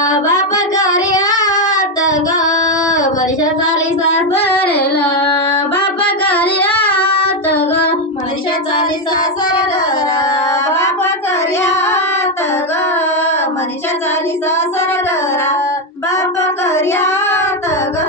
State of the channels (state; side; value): normal; both; correlation 0.06